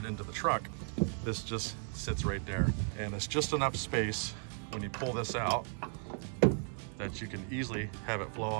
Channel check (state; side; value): silent; left; 54 dB below the other